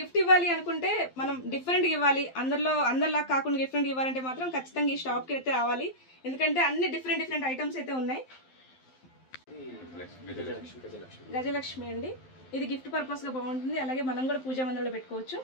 గిఫ్ట్ ఇవ్వాలి అనుకుంటే, మనం డిఫరెంట్ ఇవ్వాలి, అందరిలా కాకుండా డిఫరెంట్ ఇవ్వాలంటే మాత్రం ఖచ్చితంగా ఈ షాప్కి అయితే రావాలి, ఎందుకంటే అన్ని డిఫరెంట్ ఐటమ్స్ అయితే ఉన్నాయి. గజలక్ష్మి అండి, ఇది గిఫ్ట్ పర్పస్ గా బాగుంటుంది. అలాగే మనం కూడా పూజా మందిరంలో పెట్టుకోవచ్చు.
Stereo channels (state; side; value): late; right; 12 ms